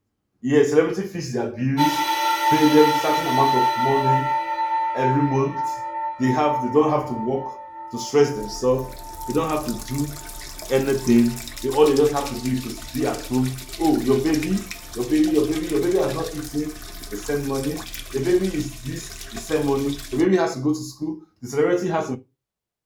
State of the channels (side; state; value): both; identical; correlation 1.00